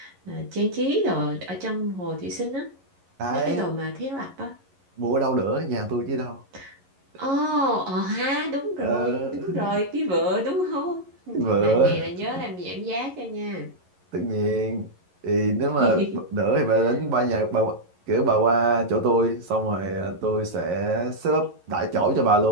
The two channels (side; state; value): left; late; 11 ms